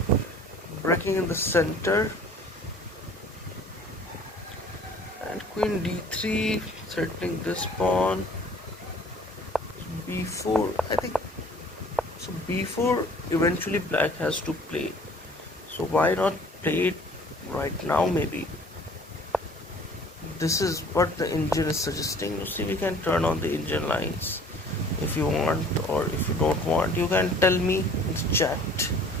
breaking in the center, and queen d3, threatening this pawn. b4, I think so. b4 eventually black has to play, so why not play it right now? Maybe this is what the engine is suggesting. You see, we can turn on the engine lines. If you want or if you don't want, you can tell me in the chat.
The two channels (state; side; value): normal; both; correlation 0.51